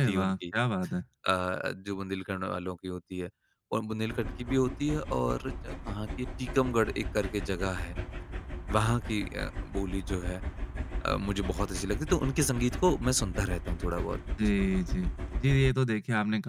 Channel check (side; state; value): both; identical; correlation 1.00